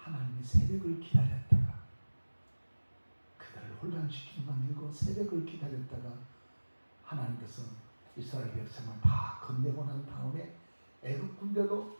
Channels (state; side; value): inverted; both; correlation -1.00